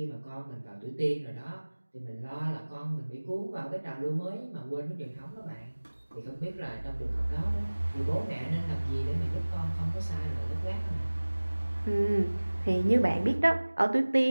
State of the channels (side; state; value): both; inverted; correlation -1.00